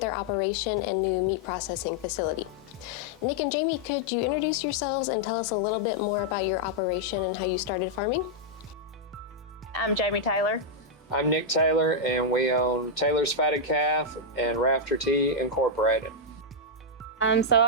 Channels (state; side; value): normal; both; correlation -0.04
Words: operation and new meat processing facility. Nick and Jamie, could you introduce yourselves and tell us a little bit more about your operation and how you started farming? I'm Jamie Taylor. I'm Nick Taylor, and we own Taylor's Fatted Calf and Rafter Tea Incorporated. So